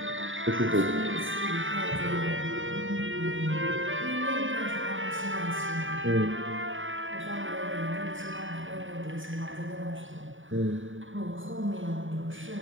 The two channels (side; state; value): left; late; 0.57 ms